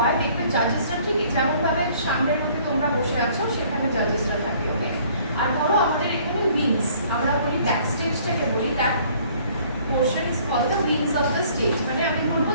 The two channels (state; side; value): inverted; both; correlation -0.57